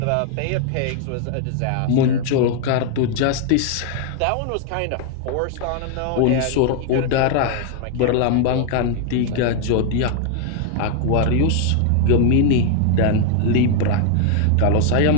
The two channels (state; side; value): different; both; correlation 0.00